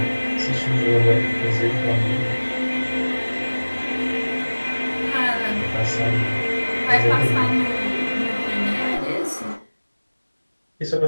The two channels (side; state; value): both; inverted; correlation -1.00